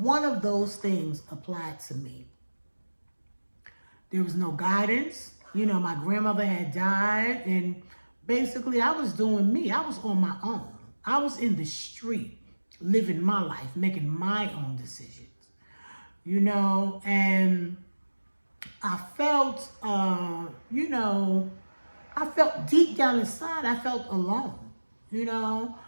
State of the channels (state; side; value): inverted; both; correlation -1.00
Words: of those things applied to me. There was no guidance. You know, my grandmother had died, and basically I was doing me. I was on my own. I was in the street, living my life, making my own decisions. You know, and I felt, you know, I felt deep down inside, I felt alone. You know,